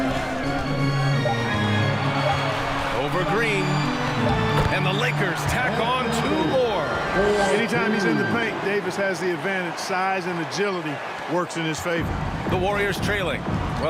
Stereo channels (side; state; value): both; identical; correlation 1.00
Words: Over Green. And the Lakers tack on 2 more. Anytime he's in the paint, Davis has the advantage. Size and agility works in his favor. The Warriors trailing.